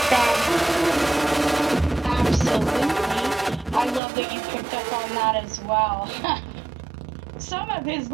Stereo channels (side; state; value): left; drops out; at 4.0 s